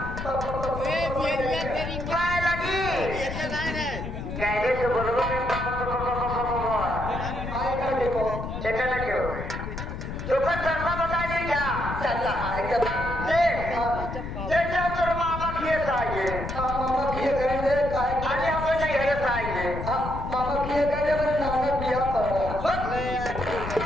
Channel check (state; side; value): noise; left; rumble, 6 dB below the sound